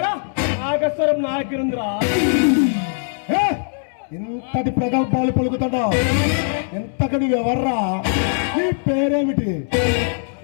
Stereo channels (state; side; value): silent; right; 65 dB below the other